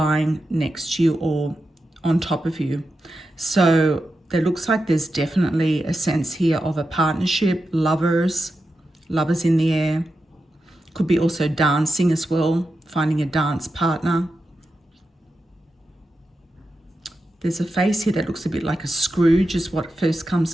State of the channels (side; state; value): both; normal; correlation 0.89